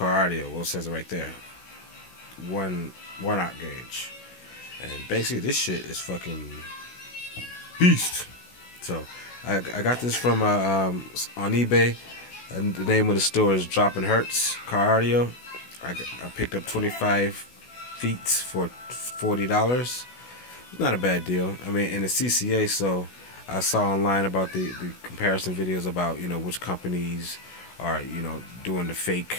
Audio. Well, it says it right there, 1/0 gauge, and basically this shit is fucking beast. So I got this from on eBay. And the name of the store is Dropping Hertz Car Audio. I picked up 25 feet for $40. It's not a bad deal. I mean, in the CCA, so I saw online about the comparison videos about, you know, which companies are, you know, doing the fake,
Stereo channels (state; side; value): late; right; 16 ms